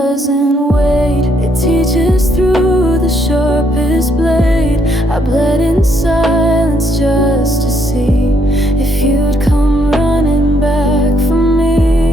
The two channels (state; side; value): normal; both; correlation 0.72